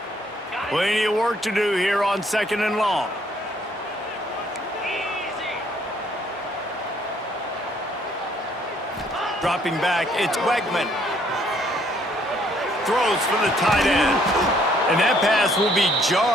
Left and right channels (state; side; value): normal; both; correlation 0.65